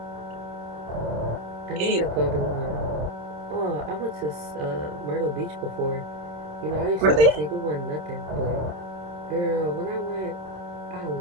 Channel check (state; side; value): late; left; 27 ms